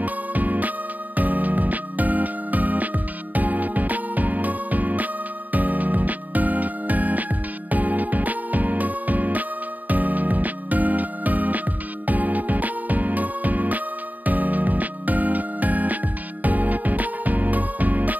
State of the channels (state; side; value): late; left; 0.080 ms